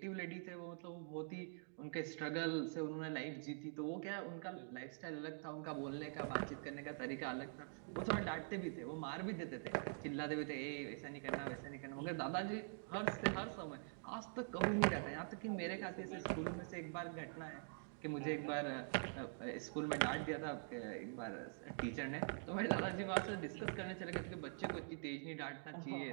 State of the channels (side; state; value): left; silent; digital silence